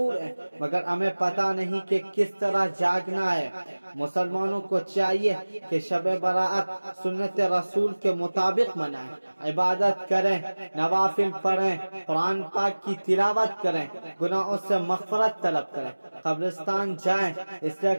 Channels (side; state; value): both; inverted; correlation -1.00